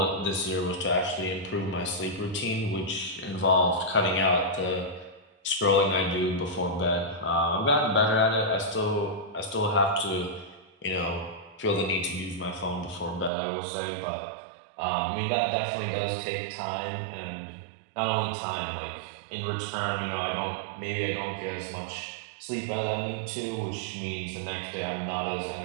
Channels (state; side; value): drops out; left; at 13.3 s